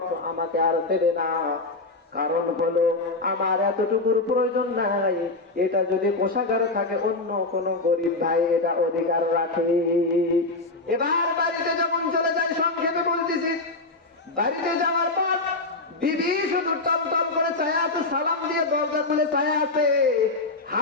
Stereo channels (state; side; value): quieter; right; 3.3 dB